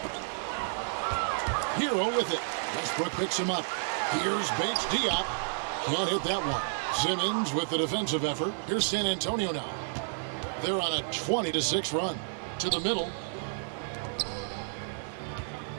Hero with it. Westbrook picks him up. Here's Bates Diop. Can't hit that one. Simmons with the defensive effort. Here's San Antonio now. They're on a 20-6 run. To the middle.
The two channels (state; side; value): silent; left; digital silence